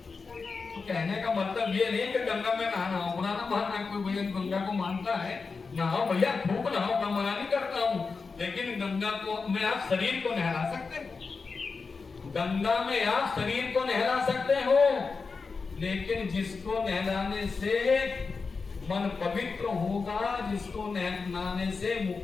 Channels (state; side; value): quieter; right; 4.6 dB